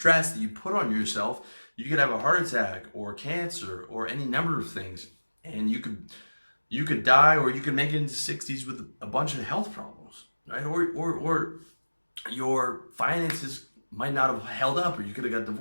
that you put on yourself, you could have a heart attack or cancer or any number of things. And you could die, or you could make it into 60s with a bunch of health problems, right? Or your finances might not have held up, or you could have got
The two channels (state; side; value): inverted; both; correlation -1.00